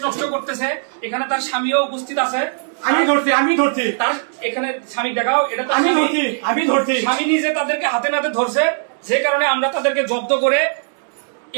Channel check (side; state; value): left; silent; digital silence